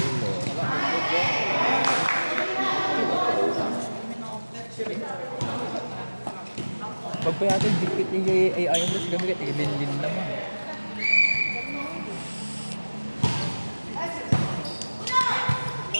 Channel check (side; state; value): both; inverted; correlation -1.00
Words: Pag pa yata dikit niya ay ayaw mo siya gamit, ibinlin naman.